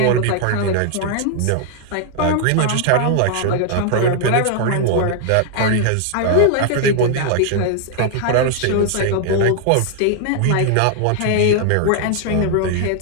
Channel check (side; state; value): both; different; correlation 0.00